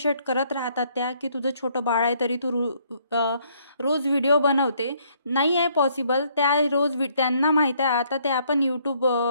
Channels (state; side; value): inverted; both; correlation -0.67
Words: करत राहतात त्या, की तुझं छोटं बाळ आहे तरी तू रोज व्हिडिओ बनवते. नाही आहे पॉसिबल. त्या त्यांना माहीत आहे आता त्या पण